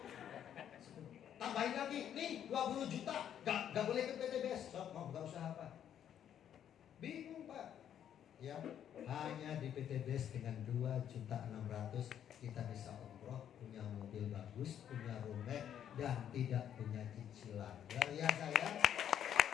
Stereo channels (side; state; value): right; quieter; 9.7 dB